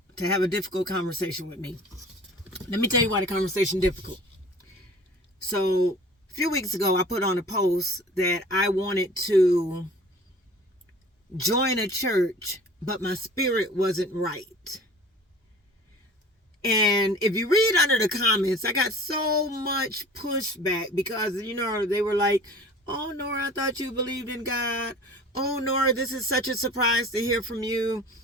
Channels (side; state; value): both; normal; correlation 0.45